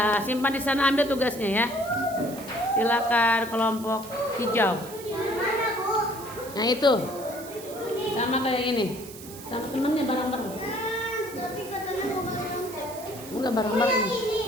Simpan di sana, ambil tugasnya ya. Silakan kelompok hijau. Nah itu, sama kayak ini, sama temennya bareng-bareng. Enggak bareng-bareng.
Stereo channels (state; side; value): noise; right; hiss, 15 dB below the sound